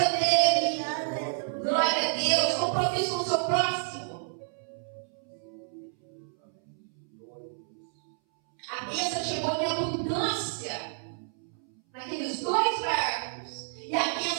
dele. Glória a Deus, compromisso com o seu próximo. A bênção chegou em abundância naqueles dois barcos. E a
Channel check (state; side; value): silent; left; 58 dB below the other